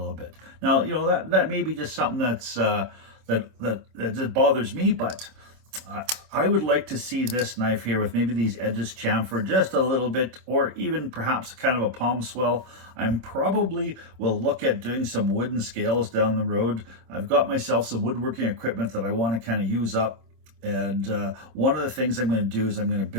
bit. Now, that may be just something that's that bothers me, but I would like to see this knife here with maybe these edges chamfered just a little bit, or even perhaps kind of a palm swell. I'm probably will look at doing some wooden scales down the road. I've got myself some woodworking equipment that I want to kind of use up. And one of the things I'm going to do is I'm going to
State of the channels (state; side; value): late; left; 27 ms